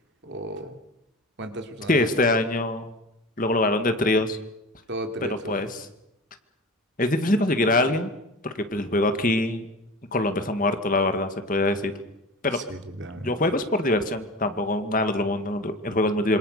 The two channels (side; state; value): both; normal; correlation 0.34